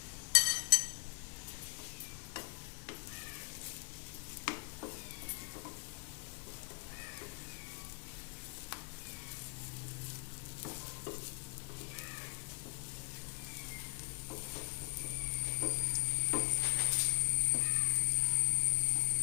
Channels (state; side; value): quieter; right; 34.5 dB